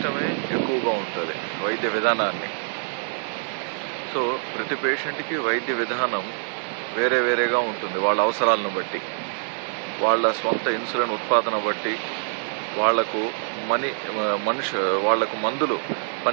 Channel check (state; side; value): silent; left; digital silence